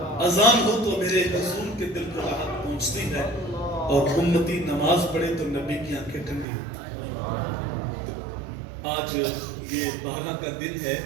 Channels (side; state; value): left; drops out; at 6.5 s